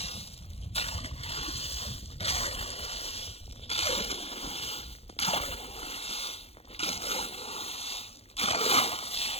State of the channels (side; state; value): right; late; 0.29 ms